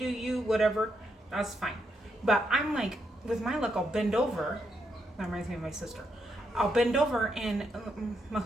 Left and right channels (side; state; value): both; normal; correlation 0.80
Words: you, whatever, that's fine. But I'm like, with my look, I'll bend over. That reminds me of my sister. I'll bend over and my